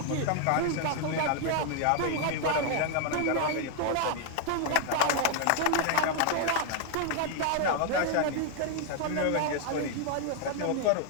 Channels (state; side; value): different; both; correlation 0.00